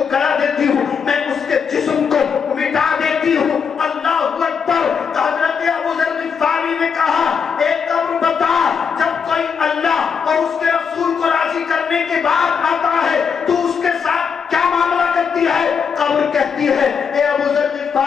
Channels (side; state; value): right; quieter; 6.5 dB